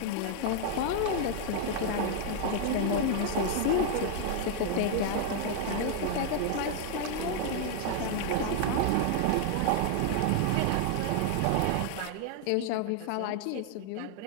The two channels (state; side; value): different; both; correlation 0.00